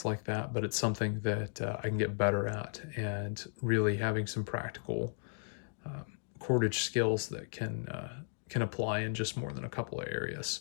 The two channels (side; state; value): right; silent; digital silence